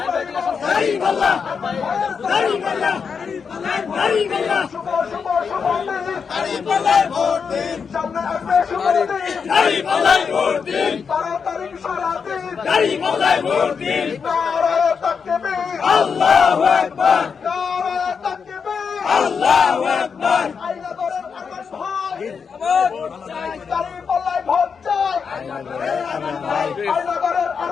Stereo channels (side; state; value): right; quieter; 6.0 dB